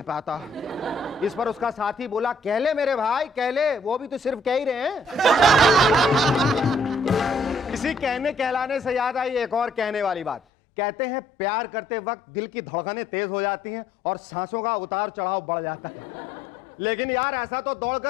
पाता। इस पर उसका साथी बोला, कह ले मेरे भाई, कह ले, वो भी तो सिर्फ कह ही रहे हैं। इसी कहने कहलाने से याद आई एक और कहने वाली बात। कहते हैं प्यार करते वक्त दिल की धड़कनें तेज हो जाती हैं और सांसों का उतार चढ़ाव बढ़ जाता है। लेकिन यार ऐसा तो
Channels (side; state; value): right; drops out; at 10.4 s